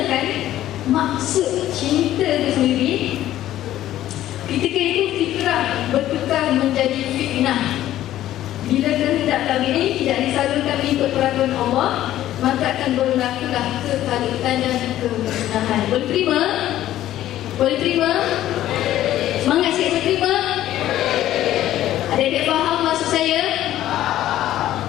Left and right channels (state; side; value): quieter; right; 13.3 dB